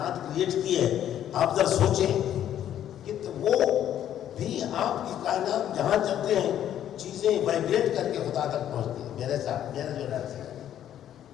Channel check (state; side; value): quieter; right; 10.8 dB